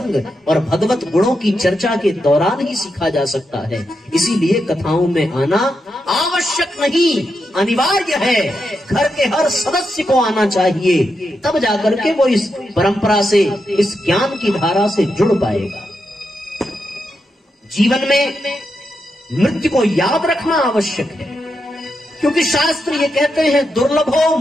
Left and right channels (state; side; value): normal; both; correlation 0.85